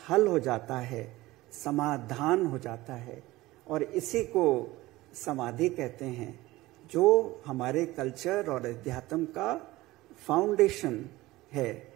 हल हो जाता है, समाधान हो जाता है। और इसी को समाधि कहते हैं, जो हमारे कल्चर और अध्यात्म का फाउंडेशन है,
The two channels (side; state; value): left; quieter; 18.5 dB